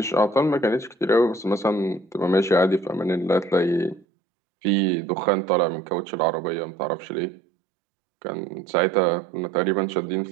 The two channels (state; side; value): drops out; left; at 4.0 s